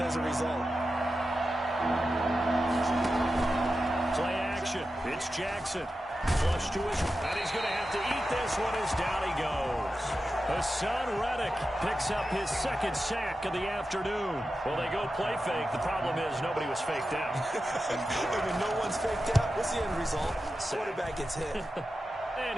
as a result. Play action. It's Jackson. Flush to his, and he's going to have to eat this one as down he goes. Hassan Reddick picks up his 2nd sack of the afternoon. Well, they go play fake. The problem is nobody was faked out. And when no one's faked out, what's the end result? Quarterback gets hit.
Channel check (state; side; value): normal; both; correlation 0.91